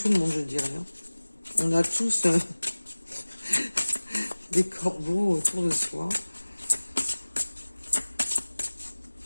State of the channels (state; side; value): inverted; both; correlation -1.00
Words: le monde, je dirais. Hein. On a tous des corbeaux autour de soi.